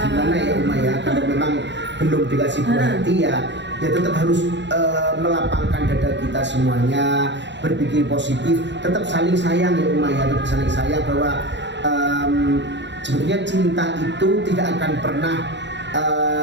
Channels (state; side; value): late; left; 0.52 ms